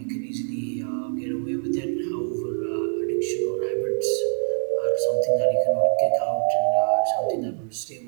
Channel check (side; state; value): left; silent; digital silence